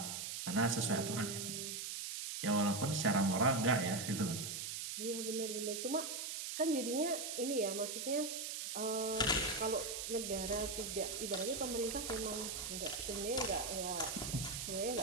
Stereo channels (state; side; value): noise; right; hiss, 4 dB below the sound